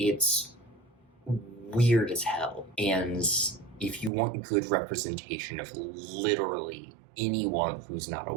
weird as hell, and if you want good representation of literally anyone who's not a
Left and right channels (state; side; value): drops out; left; at 4.1 s